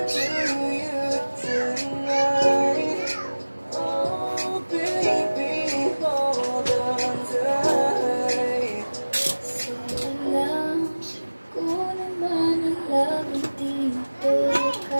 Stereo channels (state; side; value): inverted; both; correlation -1.00